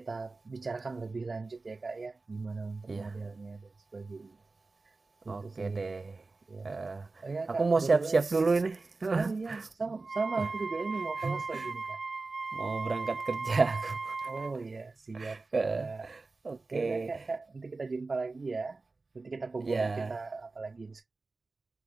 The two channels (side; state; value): left; quieter; 3.7 dB